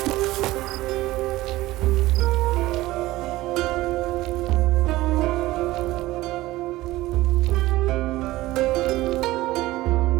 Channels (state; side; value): quieter; left; 17.7 dB